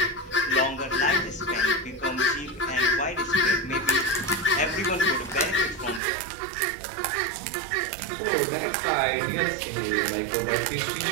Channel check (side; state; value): left; drops out; at 6.0 s